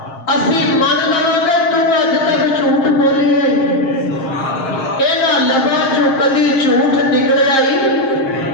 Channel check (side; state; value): right; late; 7.5 ms